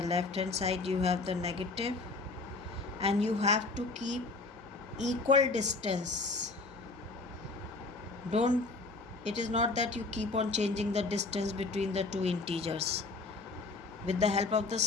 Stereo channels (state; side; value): quieter; right; 3.5 dB